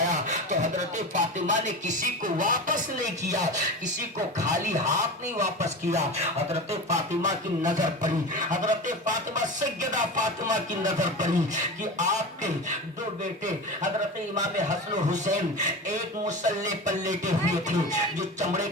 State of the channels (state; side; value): normal; both; correlation 0.28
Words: تو حضرت فاطمہ نے کسی کو واپس نہیں کیا، کسی کو خالی ہاتھ نہیں واپس کیا۔ حضرت فاطمہ کی نظر پڑی، حضرت فاطمہ سیدہ فاطمہ کی نظر پڑی کہ آپ کے 2 بیٹے حضرت امام حسن و حسین ایک مسلح پر لیٹے ہوئے تھے جو چمڑے